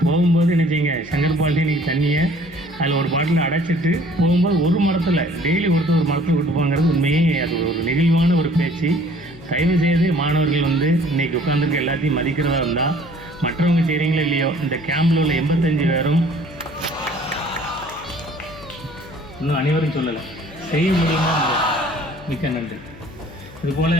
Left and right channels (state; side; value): noise; left; hum, 20 dB below the sound